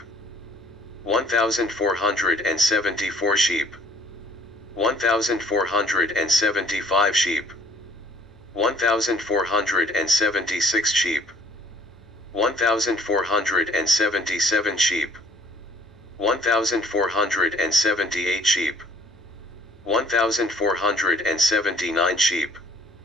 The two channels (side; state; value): both; normal; correlation 0.57